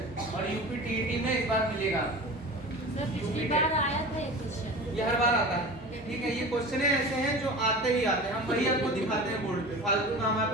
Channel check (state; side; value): normal; both; correlation 0.34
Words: और यूपी टीईटी में इस बार मिलेगा। पिछली बार आया था ये क्वेश्चन, ये हर बार आता है, ठीक है। ये क्वेश्चन ऐसे हैं जो आते ही आते हैं, हम वही आपको दिखाते हैं बोर्ड पे, फालतू का हमारे